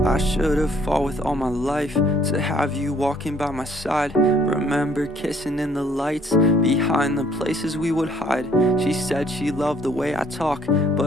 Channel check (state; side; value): normal; both; correlation 0.62